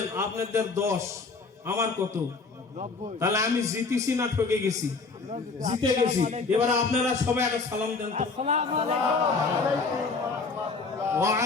আপনাদের 10, আমার কত? 90 তাহলে আমি জিতেছি না ঠকে গেছি? জিতে গেছি। এবার আপনারা সবাই একটা সালাম দেন তো। আসসালামু আলাইকুম ওয়া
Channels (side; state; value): right; quieter; 4.2 dB